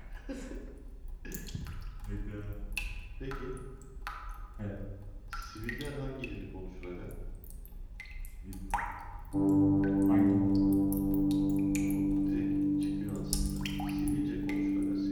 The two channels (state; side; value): identical; both; correlation 1.00